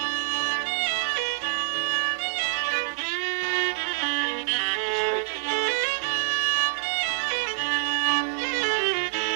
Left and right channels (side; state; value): left; silent; digital silence